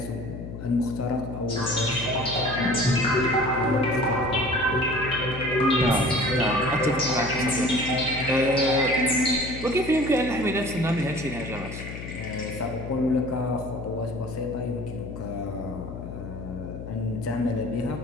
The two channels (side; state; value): left; noise; hum, 9 dB below the sound